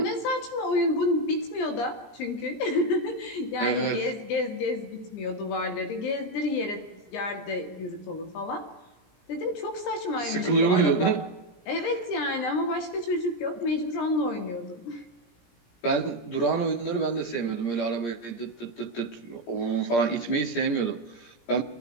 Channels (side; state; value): right; late; 17 ms